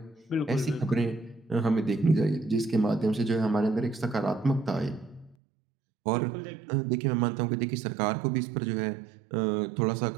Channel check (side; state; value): left; drops out; at 5.4 s